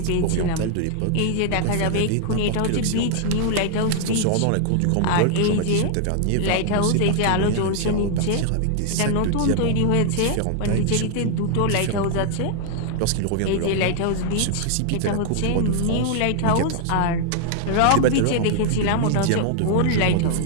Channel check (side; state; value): both; different; correlation 0.00